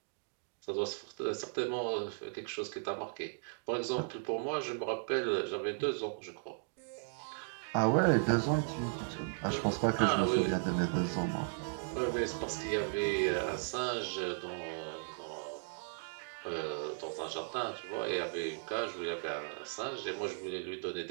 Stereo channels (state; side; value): silent; left; digital silence